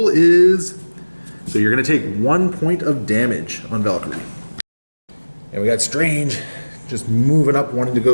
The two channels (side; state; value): both; inverted; correlation -1.00